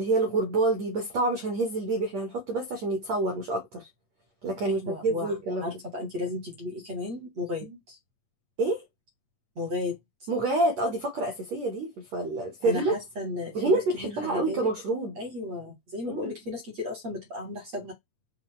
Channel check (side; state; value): left; late; 8.6 ms